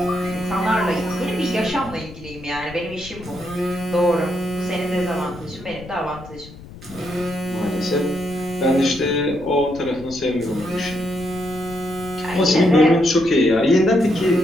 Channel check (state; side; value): noise; left; rumble, 16 dB below the sound